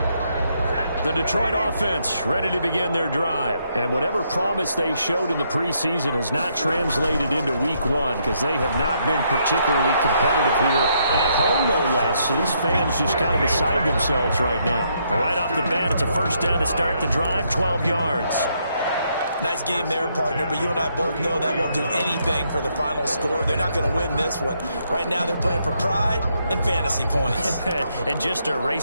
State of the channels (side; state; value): both; inverted; correlation -0.75